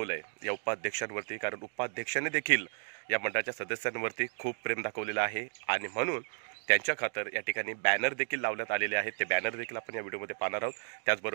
आहे या उपाध्यक्षांवरती, कारण उपाध्यक्षांनी देखील या मंडळाच्या सदस्यांवरती खूप प्रेम दाखवलेलं आहे आणि म्हणून त्यांच्या खातर या ठिकाणी बॅनर देखील लावण्यात आलेले आहेत। ते बॅनर देखील आपण या व्हिडिओमध्ये पाहणार आहोत।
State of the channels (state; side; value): silent; left; digital silence